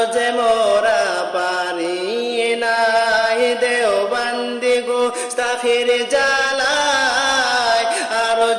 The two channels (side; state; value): both; identical; correlation 1.00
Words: যে মোরা পারি নাই দেওবন্দি গোস্তাখির জালায় আর